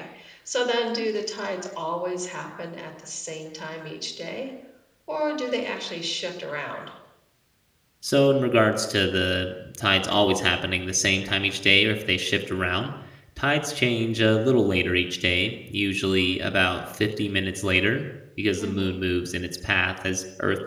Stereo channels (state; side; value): identical; both; correlation 1.00